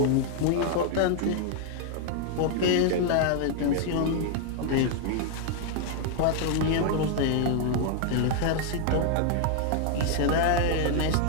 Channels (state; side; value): different; both; correlation 0.00